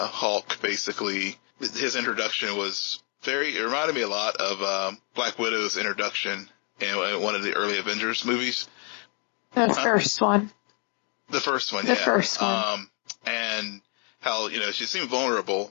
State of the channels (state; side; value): quieter; right; 37.4 dB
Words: basically, his introduction was it reminded me a lot of, Black Widow's introduction in one of the early Avengers movies. The first one. The first one, The first one. And how, she seemed